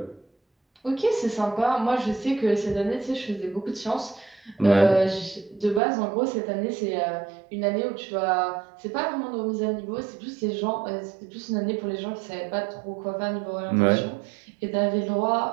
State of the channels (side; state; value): left; drops out; at 5.8 s